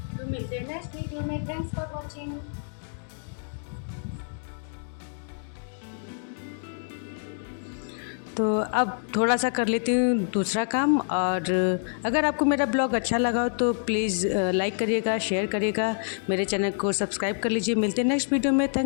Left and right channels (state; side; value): silent; right; digital silence